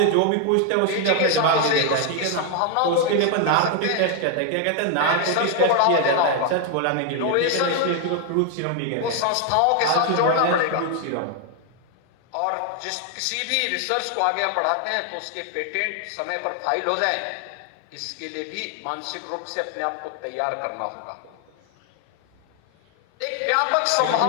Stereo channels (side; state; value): both; different; correlation 0.00